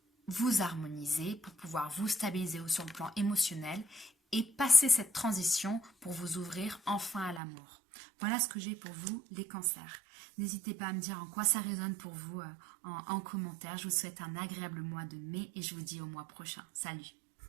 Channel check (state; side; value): drops out; left; at 7.4 s